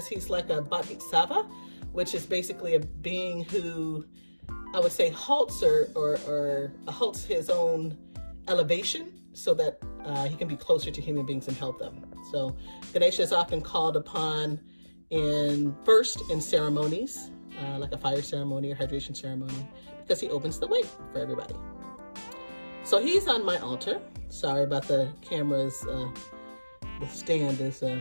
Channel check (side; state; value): both; inverted; correlation -1.00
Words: he's like a bodhisattva, which is basically a being who I would say halts or halts his own elevation so that he can be closer to human beings and help them. So Ganesha is often called upon in ceremonies, like a fire ceremony or hydration ceremony, because he opens the way for everybody. So he's on my altar. Sorry about the cameras. The stand is